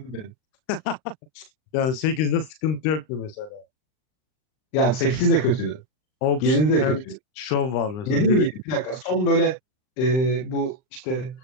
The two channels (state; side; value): late; right; 39 ms